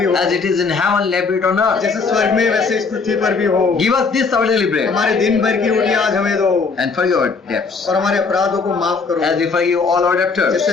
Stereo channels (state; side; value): quieter; right; 4.7 dB